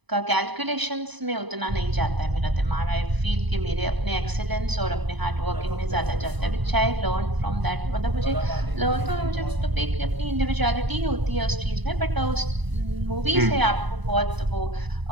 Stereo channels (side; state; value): left; late; 1.0 ms